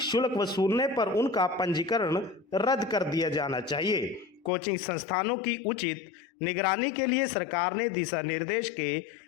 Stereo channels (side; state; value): right; drops out; at 4.5 s